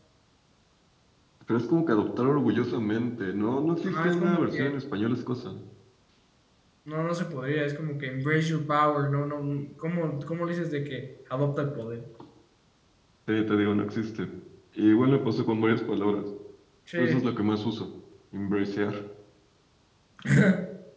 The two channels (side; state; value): both; identical; correlation 1.00